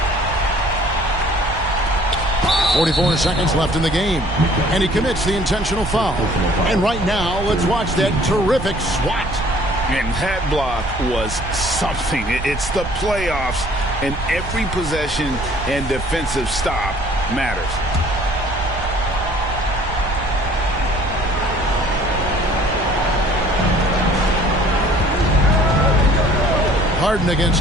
.44 seconds left in the game. And he commits the intentional foul. And right now, let's watch that terrific swat. And that block was something. It's the playoffs, and every possession and defensive stop matters. Harden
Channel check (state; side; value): noise; right; rumble, 8 dB below the sound